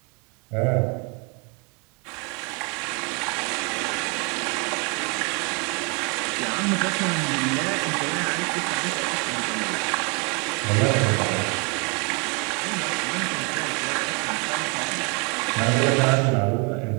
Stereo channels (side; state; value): left; quieter; 32.9 dB